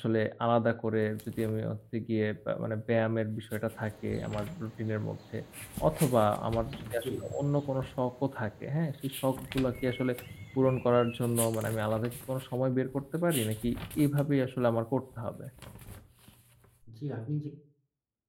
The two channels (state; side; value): identical; both; correlation 1.00